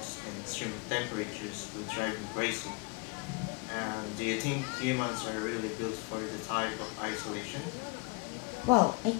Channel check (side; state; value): right; quieter; 30.1 dB